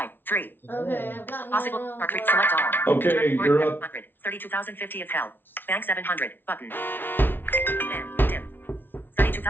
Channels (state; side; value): late; right; 0.099 ms